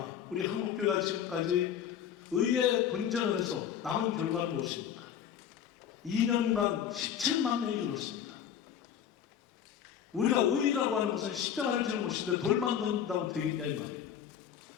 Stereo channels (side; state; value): right; quieter; 9.0 dB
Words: 우리 한국교회가 지금까지 의회 분쟁을 해서 남은 결과는 무엇입니까? 2년간 17만 명이 줄었습니다. 우리가 의의라고 하는 것은 십자가를 지는 것인데 돌만 던진다고 되겠냐 이 말이에요.